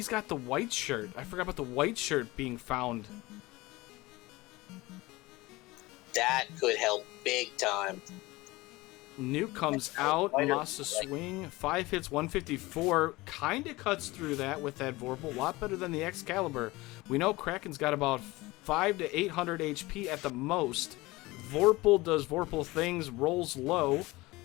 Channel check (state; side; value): quieter; right; 20.9 dB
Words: got the white shirt. I forgot about the white shirt being found. That could help big time. Nuke comes out. Masa swing. 5 hits, 154. Kind of cuts through that with that Vorpal. A lot better than the Excalibur. We know Kraken's got about 500 to 800 HP at the most. Vorpal does Vorpal things, rolls low.